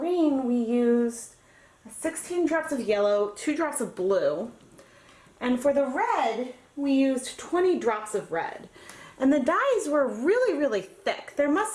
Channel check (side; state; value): both; identical; correlation 1.00